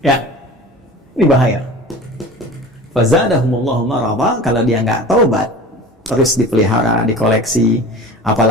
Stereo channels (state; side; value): normal; both; correlation 0.38